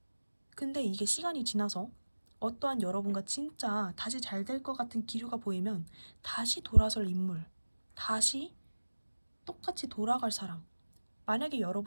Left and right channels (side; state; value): both; inverted; correlation -1.00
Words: 근데 이게 시간이 지나서 어떠한 여러분과 진짜 다시 잘 될 것 같은 기류가 보이면 다시 돌아설 인물, 다시 똑같이 돌아갈 사람. 만약에